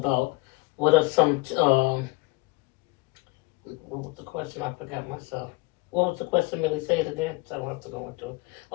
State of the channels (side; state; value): right; quieter; 24.5 dB